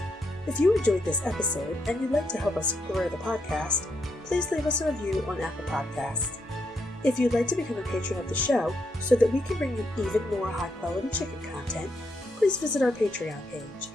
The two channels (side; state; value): both; normal; correlation 0.79